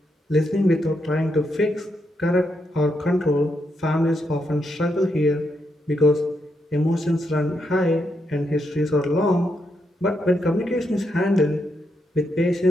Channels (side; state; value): both; normal; correlation 0.81